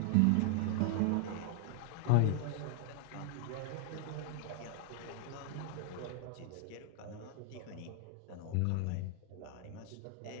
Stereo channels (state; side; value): different; both; correlation 0.00